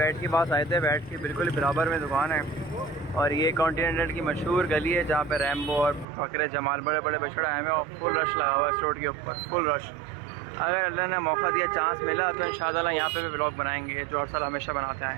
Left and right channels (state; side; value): drops out; left; at 6.1 s